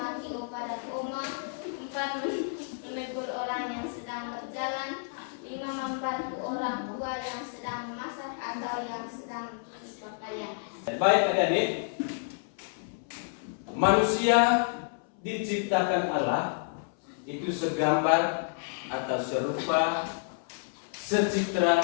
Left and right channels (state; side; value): silent; right; 58 dB below the other